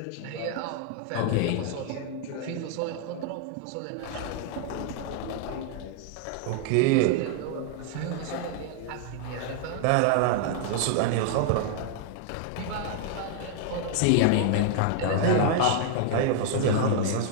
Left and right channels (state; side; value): different; both; correlation 0.00